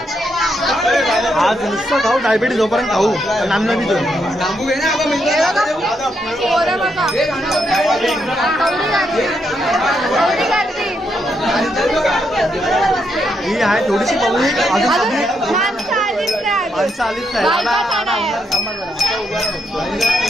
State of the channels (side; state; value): both; normal; correlation 0.79